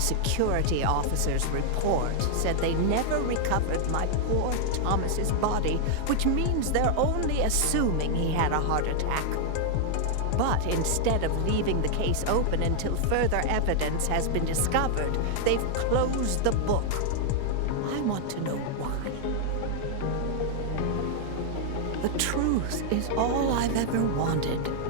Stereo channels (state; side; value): different; both; correlation 0.00